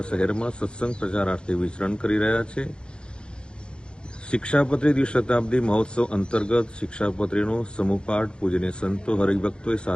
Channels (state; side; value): late; right; 0.052 ms